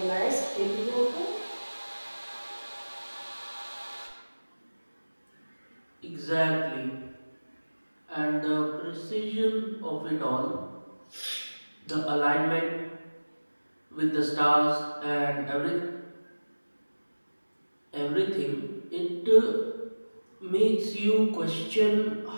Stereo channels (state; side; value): inverted; both; correlation -1.00